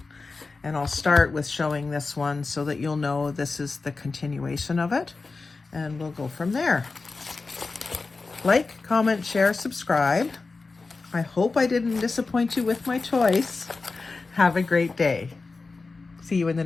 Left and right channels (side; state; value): right; quieter; 4.0 dB